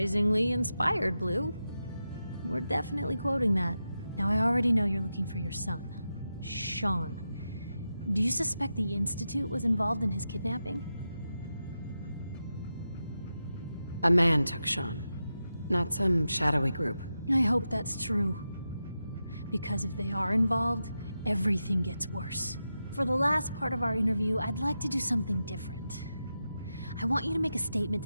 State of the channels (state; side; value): inverted; both; correlation -0.89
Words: inspired, Blue. We're definitely quoting that. Now, I already know you're looking for your son, Sean. Do you suspect the Institute was involved in his kidnapping? A man took Sean, not some shadowy group. I hope that's true. Because if they are involved, everything gets worse. For the last part of our interview, I'd like to do something different. I want you to make a statement